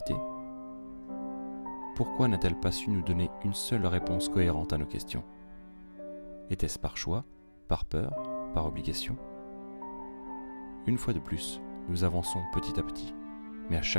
Pourquoi n'a-t-elle pas su nous donner une seule réponse cohérente à nos questions? Était-ce par choix, par peur, par obligation? Une fois de plus, nous avançons petit à petit, mais à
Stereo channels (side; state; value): both; inverted; correlation -1.00